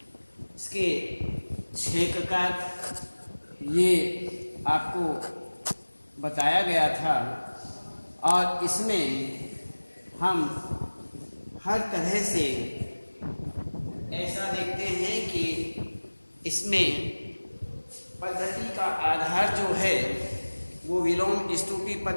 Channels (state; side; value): inverted; both; correlation -1.00